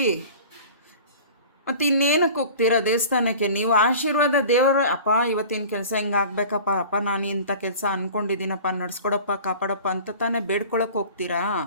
ಮತ್ತು ಇನ್ನೇನಕ್ಕೆ ಹೋಗ್ತೀರಾ ದೇವಸ್ಥಾನಕ್ಕೆ? ನೀವು ಆಶೀರ್ವಾದ ದೇವರು, ಅಪ್ಪ ಇವತ್ತಿನ ಕೆಲಸ ಹಿಂಗೆ ಆಗಬೇಕಪ್ಪ, ಅಪ್ಪ ನಾನು ಇಂಥ ಕೆಲಸ ಅಂದ್ಕೊಂಡಿದ್ದೀನಪ್ಪ, ನಡೆಸ್ಕೊಡಪ್ಪ, ಕಾಪಾಡಪ್ಪ ಅಂತ ತಾನೇ ಬೇಡ್ಕೊಳಕ್ಕೆ ಹೋಗ್ತೀರಾ?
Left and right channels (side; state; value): both; inverted; correlation -0.41